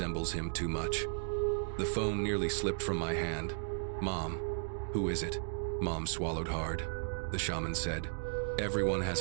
him too much.'" The phone nearly slipped from my hand. "Mom, who is it?" Mom swallowed hard. The shaman said, "Everyone has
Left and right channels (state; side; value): silent; left; digital silence